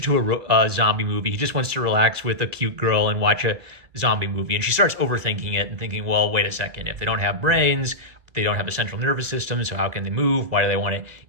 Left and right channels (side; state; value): left; late; 2.1 ms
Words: to a zombie movie. He just wants to relax with a cute girl and watch a zombie movie. And she starts overthinking it and thinking, well, wait a second. If they don't have brains, they don't have a central nervous system, so how can they move? Why do they want to